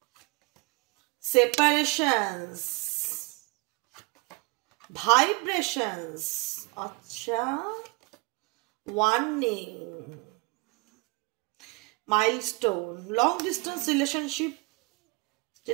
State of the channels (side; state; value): left; quieter; 28.7 dB